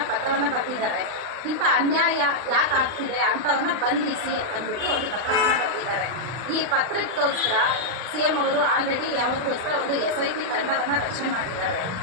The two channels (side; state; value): left; late; 39 ms